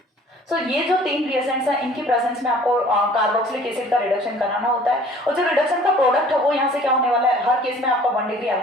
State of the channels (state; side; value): normal; both; correlation 0.51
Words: So ये जो 3 रिएजेंट्स हैं इनकी प्रेजेंस में आपको कार्बोक्सिलिक एसिड का रिडक्शन कराना होता है. और जो रिडक्शन का प्रोडक्ट है वो यहाँ से क्या होने वाला है, हर केस में आपका 1 डिग्री